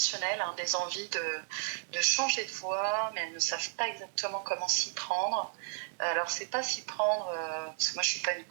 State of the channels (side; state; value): left; silent; digital silence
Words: des envies de changer de voie, mais elles ne savent pas exactement comment s'y prendre. Alors c'est pas s'y prendre, parce que moi je suis pas une